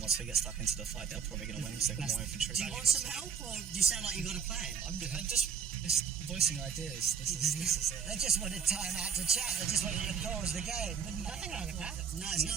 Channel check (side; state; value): left; quieter; 7.0 dB